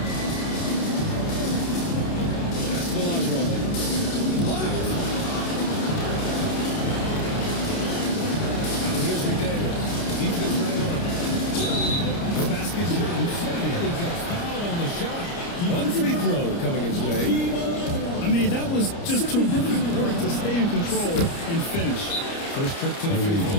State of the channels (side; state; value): right; late; 29 ms